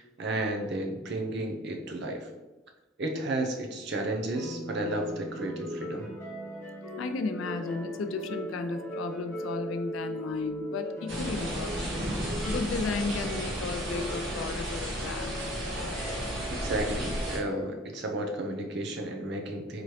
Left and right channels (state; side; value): normal; both; correlation 0.48